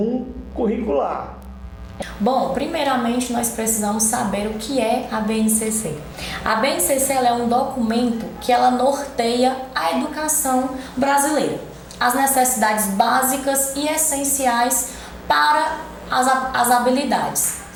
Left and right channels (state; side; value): identical; both; correlation 1.00